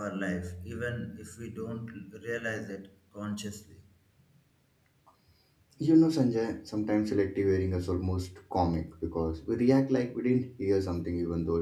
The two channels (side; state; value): both; identical; correlation 1.00